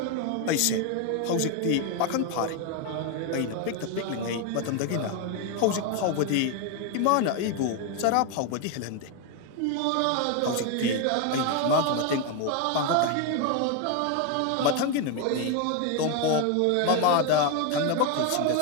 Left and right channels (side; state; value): both; different; correlation 0.01